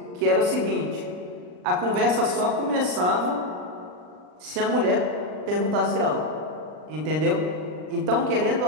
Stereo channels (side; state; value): left; late; 39 ms